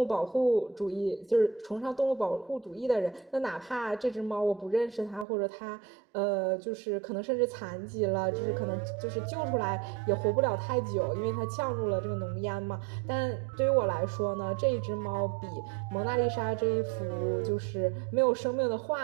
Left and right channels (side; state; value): left; drops out; at 5.2 s